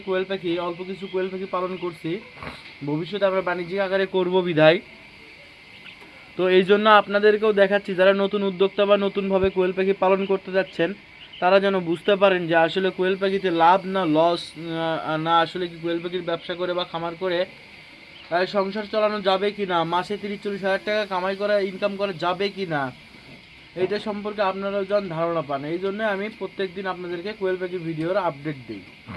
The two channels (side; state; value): both; identical; correlation 1.00